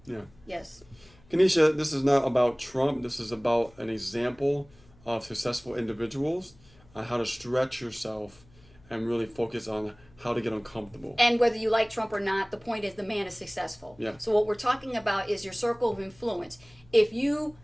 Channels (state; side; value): noise; left; hum, 27 dB below the sound